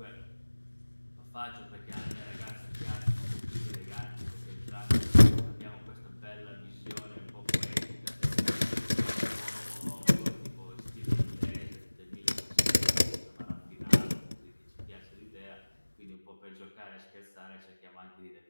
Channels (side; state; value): both; inverted; correlation -1.00